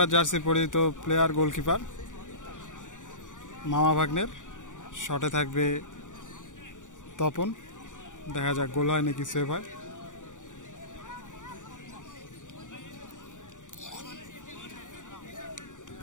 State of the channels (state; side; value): late; right; 0.86 ms